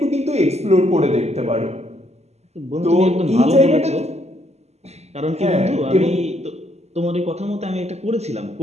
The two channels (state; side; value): late; left; 0.31 ms